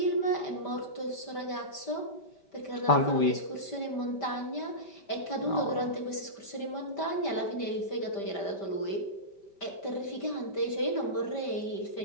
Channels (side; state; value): right; late; 5.1 ms